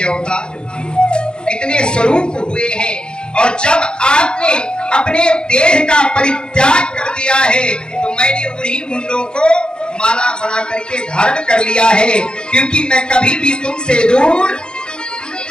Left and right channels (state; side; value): late; right; 0.050 ms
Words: अवतार, कितने स्वरूप हुए हैं। और जब आपने अपने देह का परित्याग कर दिया है तो मैंने उन्हीं मुंडों को माला बना करके धारण कर लिया है, क्योंकि मैं कभी भी तुमसे दूर